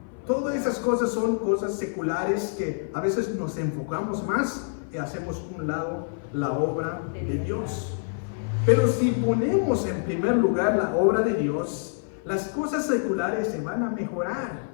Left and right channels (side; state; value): right; silent; 56 dB below the other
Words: Todas esas cosas son cosas seculares que a veces nos enfocamos más y hacemos a un lado la obra de Dios. Pero si ponemos en primer lugar la obra de Dios, las cosas seculares se van a mejorar.